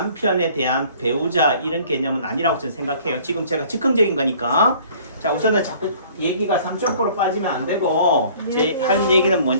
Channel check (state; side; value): inverted; both; correlation -0.53